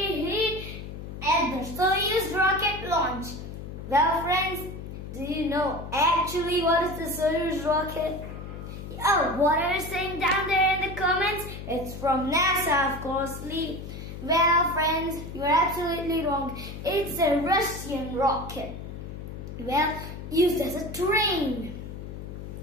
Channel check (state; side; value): noise; left; hum, 10 dB below the sound